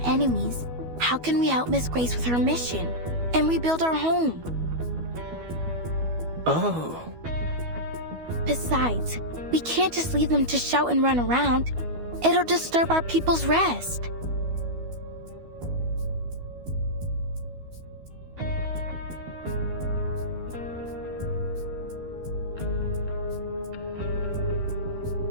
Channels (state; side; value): late; left; 12 ms